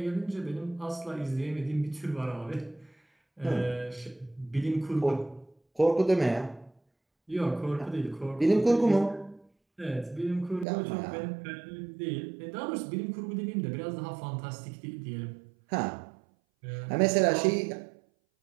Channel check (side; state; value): left; drops out; at 10.7 s